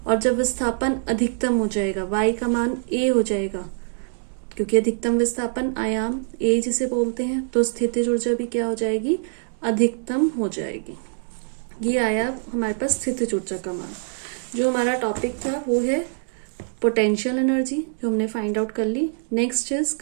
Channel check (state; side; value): silent; left; digital silence